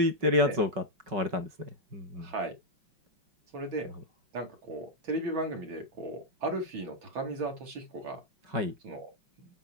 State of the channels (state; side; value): late; left; 5.3 ms